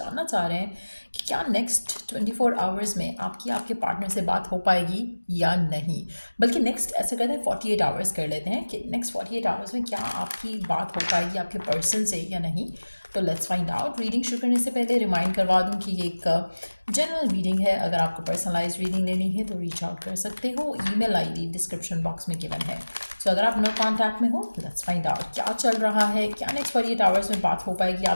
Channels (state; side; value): inverted; both; correlation -1.00